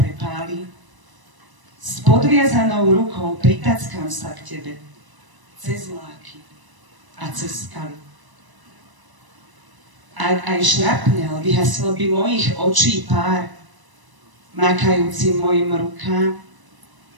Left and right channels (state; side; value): late; left; 1.0 ms